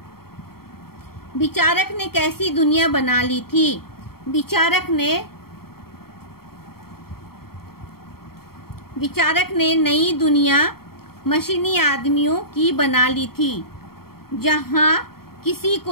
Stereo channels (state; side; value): late; right; 0.94 ms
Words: विचारक ने कैसी दुनिया बना ली थी? विचारक ने नई दुनिया मशीनी आदमियों की बना ली थी, जहां किसी